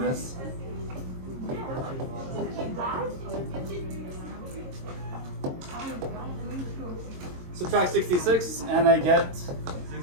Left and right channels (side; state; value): left; late; 22 ms